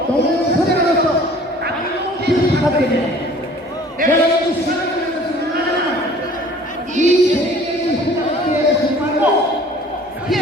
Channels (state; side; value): normal; both; correlation 0.50